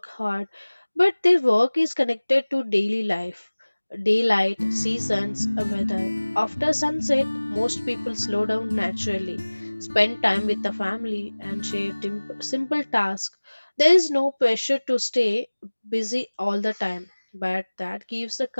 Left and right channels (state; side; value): inverted; both; correlation -1.00